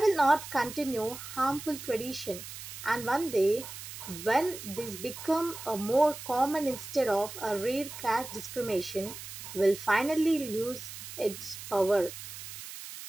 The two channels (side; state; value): right; noise; hiss, 11 dB below the sound